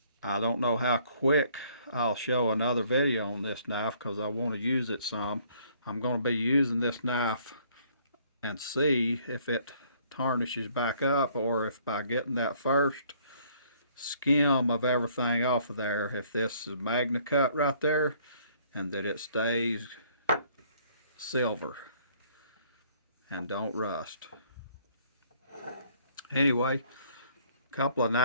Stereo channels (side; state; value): both; inverted; correlation -0.62